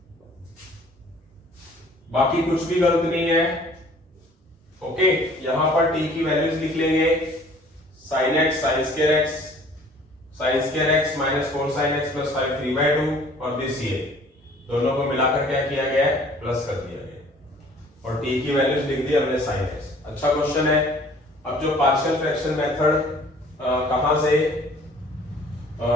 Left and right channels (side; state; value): both; normal; correlation 0.53